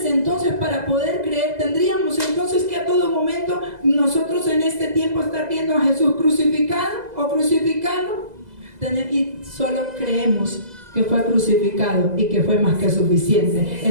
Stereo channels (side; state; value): left; late; 2.0 ms